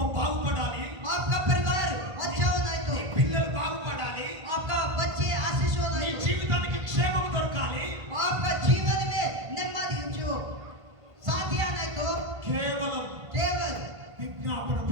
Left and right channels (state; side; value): late; left; 1.5 ms